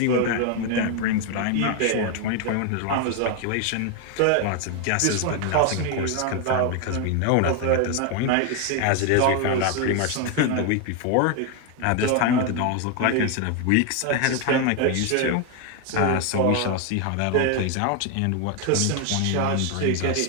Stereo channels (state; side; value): different; both; correlation 0.01